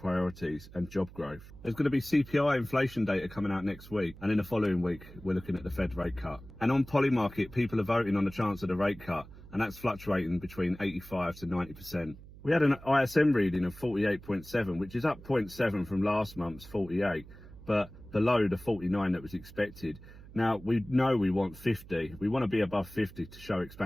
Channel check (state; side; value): noise; right; hum, 18 dB below the sound